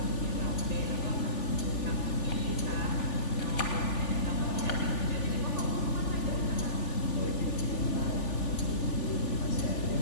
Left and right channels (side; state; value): right; late; 3.4 ms